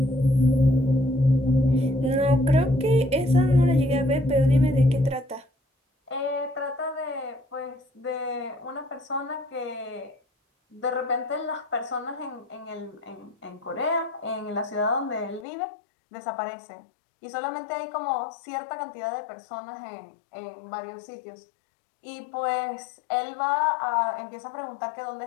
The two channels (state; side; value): drops out; right; at 15.5 s